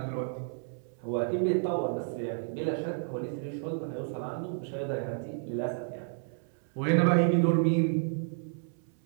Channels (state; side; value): silent; left; 57 dB below the other